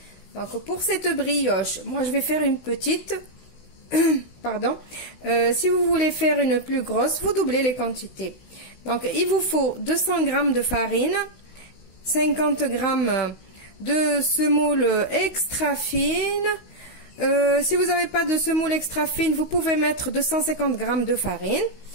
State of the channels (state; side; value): late; right; 16 ms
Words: Donc pour cette brioche, moi je vais faire une petite, pardon, si vous voulez faire une plus grosse, vous doublez les quantités. Donc il vous faut 200 g de farine, 50 g de semoule extra fine. Si vous n'avez pas de semoule extra fine, vous pouvez mettre 250 g de farine.